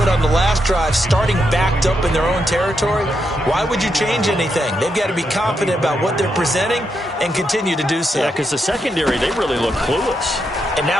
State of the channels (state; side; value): normal; both; correlation 0.82